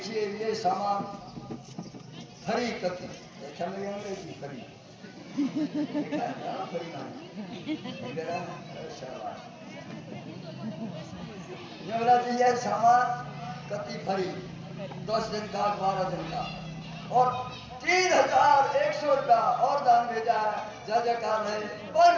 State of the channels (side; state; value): both; identical; correlation 1.00